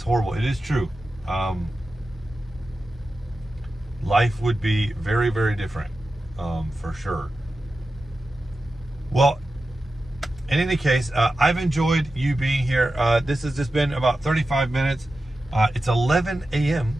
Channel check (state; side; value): normal; both; correlation 0.92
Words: horrible. It is true. Life would be very, very different, for sure. Well, in any case, I've enjoyed you being here. This has just been about 35 minutes. It's 11 a.m.